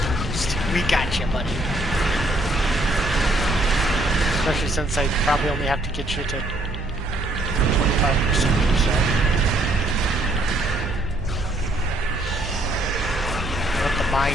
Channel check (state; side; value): noise; right; hum, 8 dB below the sound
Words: We got you, buddy. Especially since I probably only have to get you to 25% or so. Let the